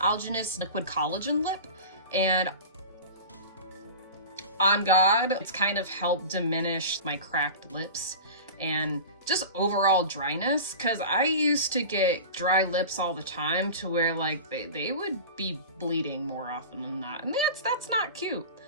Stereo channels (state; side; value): inverted; both; correlation -0.32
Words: Liquid Collagen Lip. And on God, it's kind of helped diminish my cracked lips and just overall dryness, because I used to get dry lips all the time to where like they would be bleeding more often than that, and that's not cute.